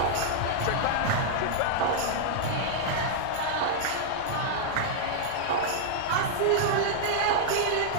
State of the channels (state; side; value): different; both; correlation -0.01